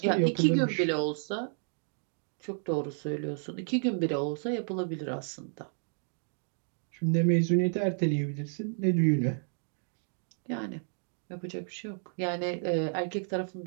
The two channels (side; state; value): left; silent; 57 dB below the other